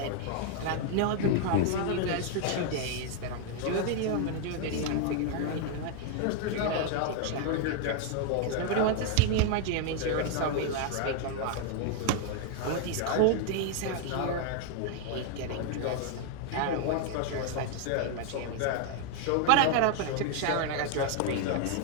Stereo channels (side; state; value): both; different; correlation 0.00